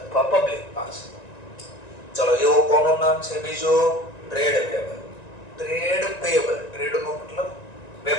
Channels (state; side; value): late; right; 1.9 ms